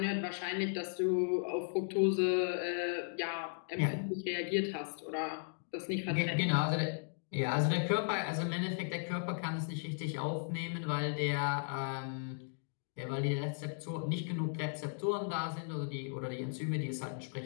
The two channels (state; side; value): silent; right; digital silence